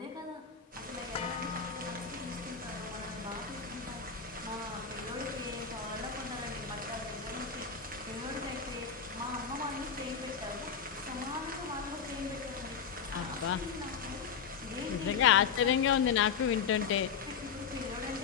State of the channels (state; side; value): quieter; right; 6.5 dB